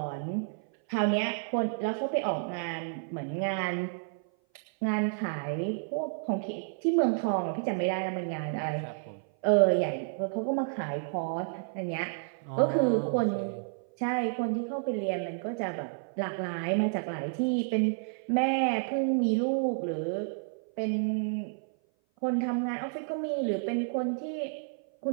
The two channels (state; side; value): silent; left; 56 dB below the other